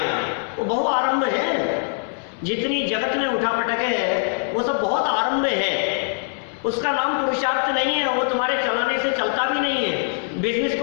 वो बहु आरंभ है। जितनी जगत में उठा पटक है वो सब बहुत आरंभ है। उसका नाम पुरुषार्थ नहीं है। वो तुम्हारे चलाने से चलता भी नहीं है। बिजनेस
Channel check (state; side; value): silent; right; 64 dB below the other